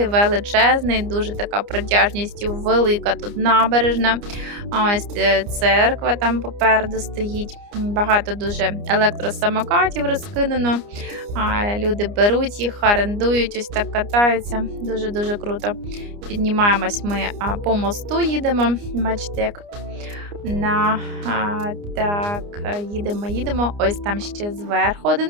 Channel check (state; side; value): late; left; 29 ms